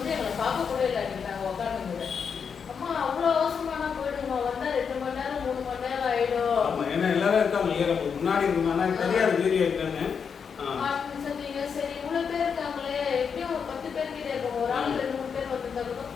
எங்களை பார்க்க கூட இல்லை நாங்க உட்காந்துங்க. அம்மா அவ்வளவு அவசரமான போயிடுமா, வந்தா 2 மணி நேரம் 3 மணி நேரம் ஆயிடும். ஏன்னா எல்லாரும் இருக்காங்க முன்னாடி சொன்னீங்க. சரி இவ்வளவு பேர் இருக்காங்களே, எப்படியும் ஒரு 10 பேர் கிட்ட இருக்கோம், ஒரு ஆள் 2-3 பேர் வந்துருந்தாலும்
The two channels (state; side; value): quieter; right; 6.5 dB